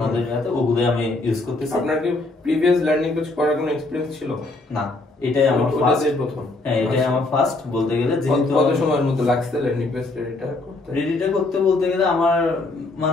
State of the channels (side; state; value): right; quieter; 3.1 dB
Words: হাতে, ওগুলো আমি ইউজ করতেছি। আপনার কি প্রিভিয়াস ল্যান্ডিং পেজ করার কোনো এক্সপেরিয়েন্স ছিল? না, এটাই আমার ফার্স্ট প্রথম। হ্যাঁ, এটাই আমার ফার্স্ট বলতে গেলে। যেহেতু কত সময়ের মধ্যে লাগছে ল্যান্ডিং পেজ রেডিটা করতে? বলতে গেলে আমার